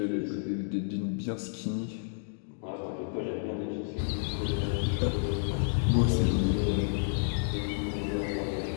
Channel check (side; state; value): right; silent; digital silence